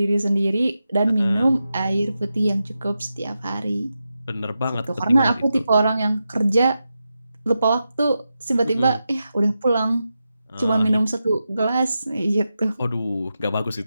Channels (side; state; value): both; inverted; correlation -0.89